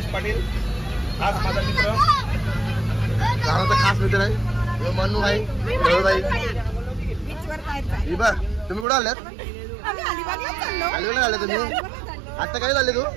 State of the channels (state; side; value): drops out; left; at 8.8 s